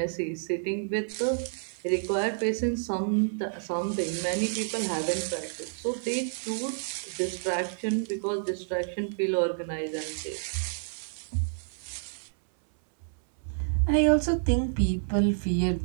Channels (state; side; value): silent; left; 58 dB below the other